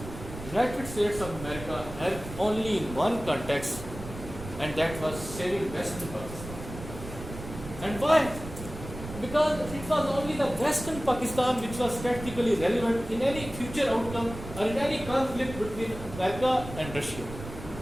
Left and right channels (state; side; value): noise; right; rumble, 11 dB below the sound